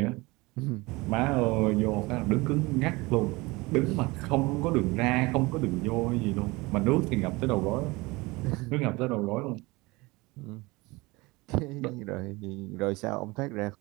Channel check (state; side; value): quieter; left; 23.2 dB